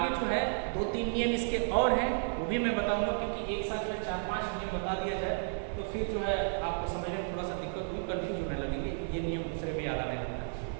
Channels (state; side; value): silent; left; digital silence